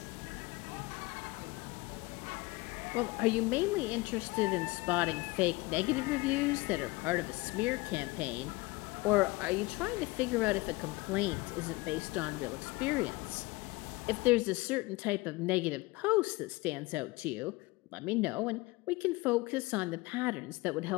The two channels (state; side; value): quieter; right; 22.5 dB